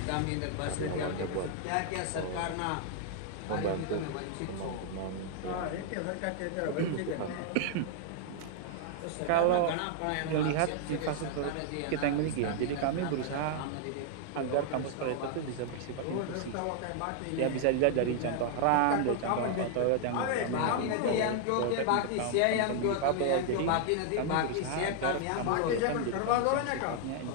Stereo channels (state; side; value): different; both; correlation 0.00